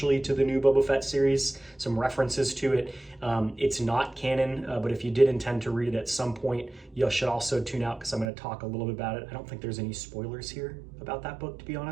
to the new Boba Fett series, some references to it. It's not canon, but if you did intend to read it at some point, you should also tune out because I'm going to talk a little bit about it. I don't think there's any spoilers here about that book, to be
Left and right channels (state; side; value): drops out; left; at 8.3 s